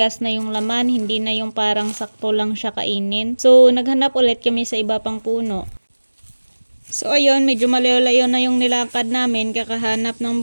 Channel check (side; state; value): both; inverted; correlation -1.00